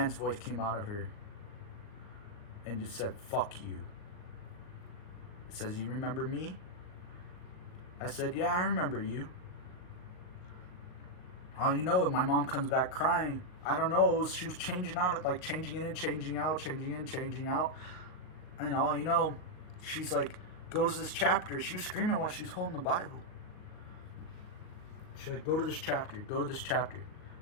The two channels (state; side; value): late; right; 39 ms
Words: voice came out of her and just said, fuck you. It says, you remember me? I said, yeah, I remember you. My mom comes back crying. I don't know, she was changing out, like changing in and changing out, changing in, changing out. And she's like, go to this chapter. She was screaming while she was holding the Bible. She's like, go to this chapter, go to this chapter.